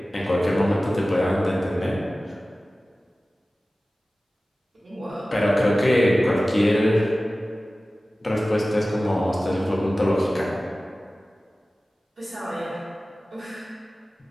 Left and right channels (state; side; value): normal; both; correlation 0.96